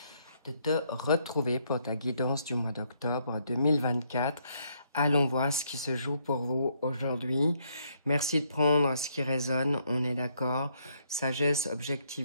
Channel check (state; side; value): inverted; both; correlation -0.72